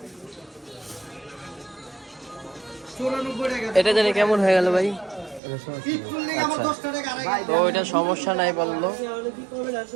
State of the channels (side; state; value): left; drops out; at 5.4 s